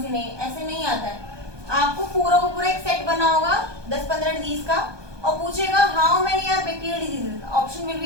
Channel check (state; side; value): late; left; 1.2 ms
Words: सी नहीं, ऐसे नहीं आता है। आपको पूरा को पूरा एक सेट बना होगा 10-15 डिजीज का और पूछेगा how many are bacterial diseases, option will